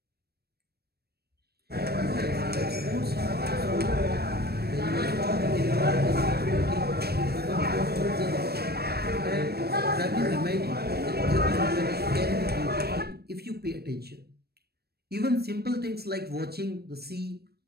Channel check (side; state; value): left; late; 0.47 ms